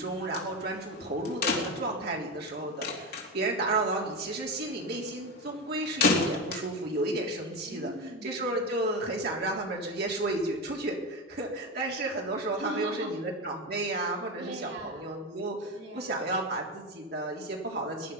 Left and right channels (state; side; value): normal; both; correlation 0.17